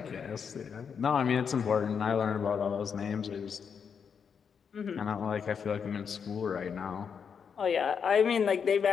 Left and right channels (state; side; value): quieter; right; 6.7 dB